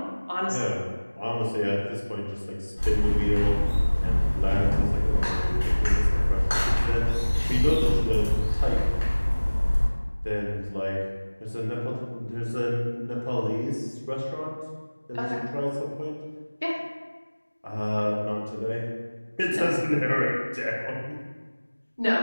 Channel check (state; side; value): inverted; both; correlation -1.00